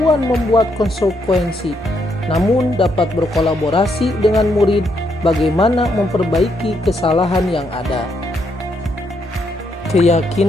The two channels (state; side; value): normal; both; correlation 0.76